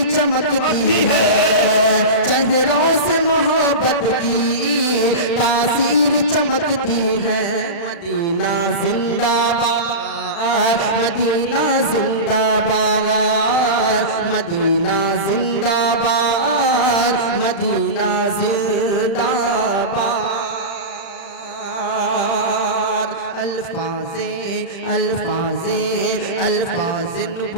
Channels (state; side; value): late; right; 35 ms